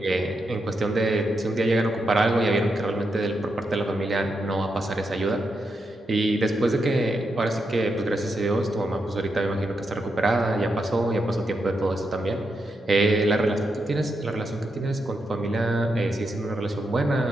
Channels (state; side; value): normal; both; correlation 0.84